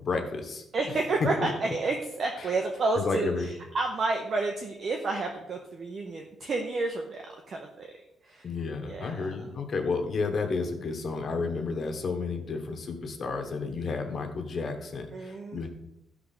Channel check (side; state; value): both; normal; correlation 0.76